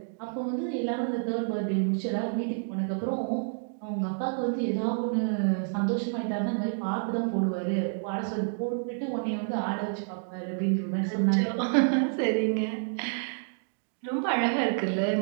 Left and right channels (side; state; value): left; silent; digital silence